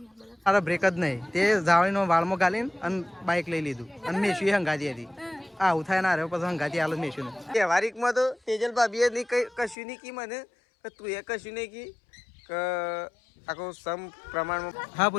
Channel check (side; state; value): right; drops out; at 9.8 s